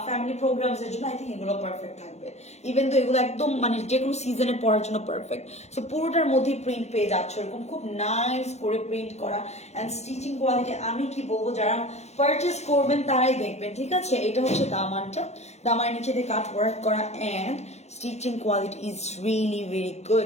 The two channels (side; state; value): right; late; 0.32 ms